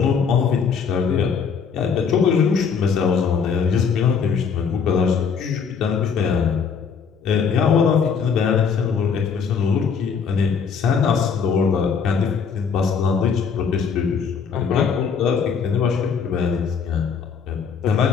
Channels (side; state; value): right; quieter; 6.2 dB